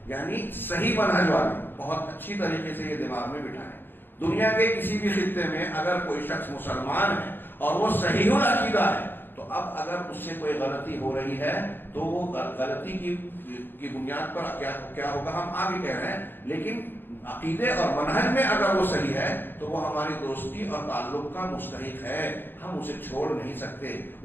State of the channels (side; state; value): right; late; 0.097 ms